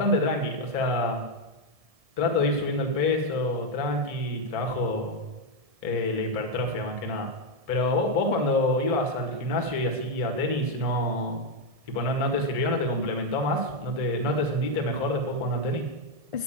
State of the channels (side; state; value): left; late; 1.7 ms